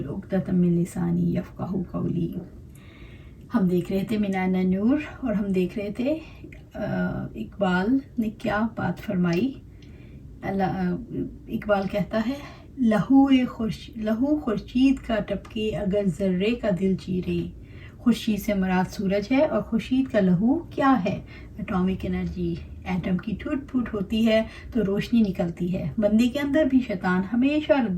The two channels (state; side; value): identical; both; correlation 1.00